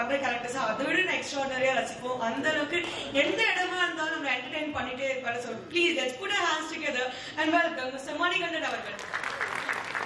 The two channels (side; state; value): both; identical; correlation 1.00